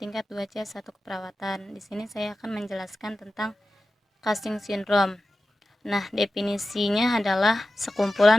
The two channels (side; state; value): both; normal; correlation 0.93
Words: 2C1 keperawatan. Di sini saya akan menjelaskan tentang Cushing syndrome. Nah, definisinya adalah